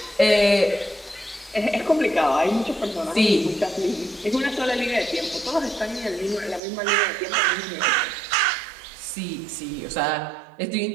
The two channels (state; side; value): drops out; left; at 6.6 s